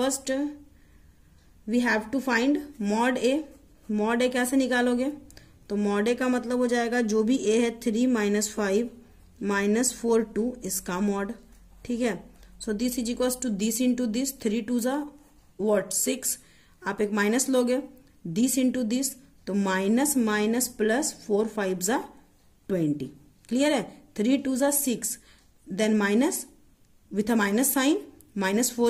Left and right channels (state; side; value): identical; both; correlation 1.00